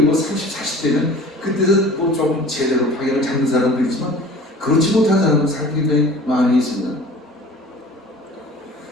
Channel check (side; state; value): both; normal; correlation 0.44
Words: 30, 40대는 그때는 뭐 좀 제대로 방향을 잡는 사람도 있지만 그렇지 못한 사람은 사실 굉장히 많이 있습니다.